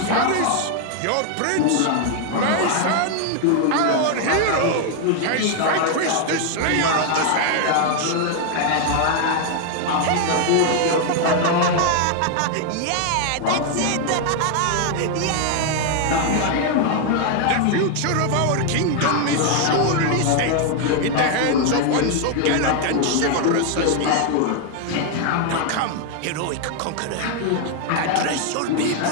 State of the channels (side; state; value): both; different; correlation 0.00